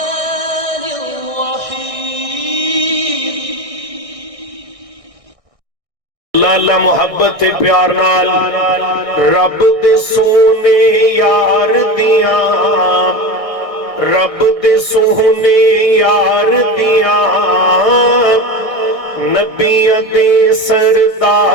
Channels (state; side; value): late; left; 1.6 ms